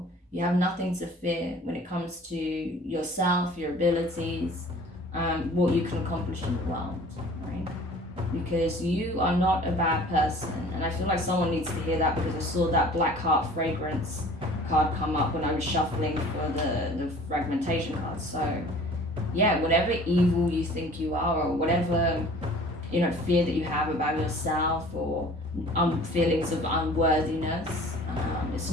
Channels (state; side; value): normal; both; correlation 0.48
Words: You have nothing to fear when it comes to yourself, your abilities, what you can accomplish in the world, right? Because you are not a bad person. And I feel like someone needs to hear that, because I saw that Black Heart Fragrance card come up when I was shuffling for the fragmentation card. So yeah, whatever evil you think you are, or whatever, you know, fear that you have about yourself, or feelings of unworthiness, it's